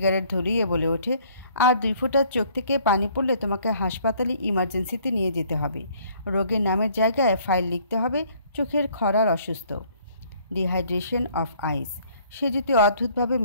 ধরিয়ে বলে ওঠে, আর 2 ফোঁটার চোখ থেকে পানি পড়লে তোমাকে হাসপাতালে ইমার্জেন্সিতে নিয়ে যেতে হবে। রোগের নামের জায়গায় ফাইল লিখতে হবে চোখের খরার অসুস্থ, ডিহাইড্রেশন অফ আইস। সে যদি অদ্ভুতভাবে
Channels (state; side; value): inverted; both; correlation -0.60